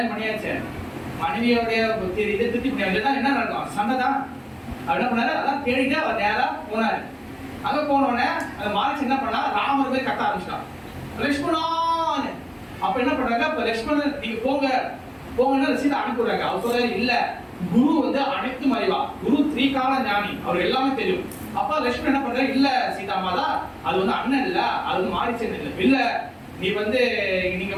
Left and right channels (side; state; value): both; identical; correlation 1.00